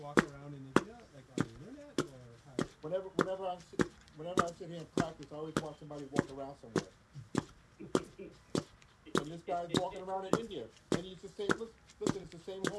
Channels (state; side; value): identical; both; correlation 1.00